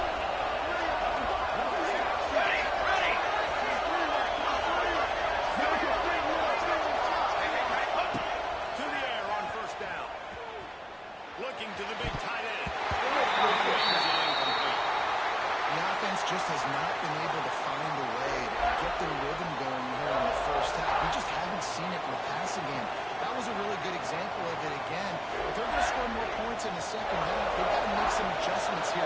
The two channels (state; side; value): identical; both; correlation 1.00